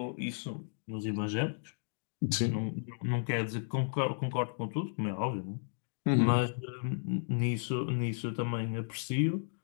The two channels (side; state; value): right; silent; digital silence